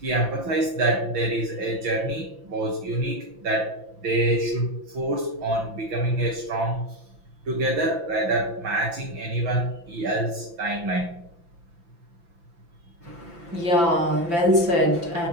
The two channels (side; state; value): left; late; 5.9 ms